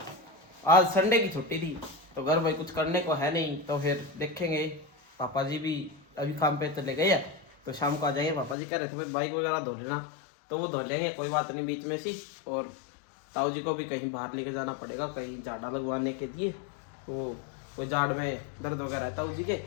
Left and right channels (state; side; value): drops out; right; at 8.6 s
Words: आज संडे की छुट्टी थी तो घर भाई कुछ करने को है नहीं, तो फिर देखेंगे। पापा जी भी अभी काम पे चले गए हैं तो शाम को आ जाएंगे। पापा जी कह रहे थे भाई बाइक वगैरह धो लेना, तो वो धो लेंगे, कोई बात नहीं बीच में सी। और ताऊ जी को भी कहीं बाहर लेके जाना पड़ेगा, कहीं झाड़ा लगवाने के लिए। वो कोई झाड़ में दर्द वगैरह है ताऊ जी के,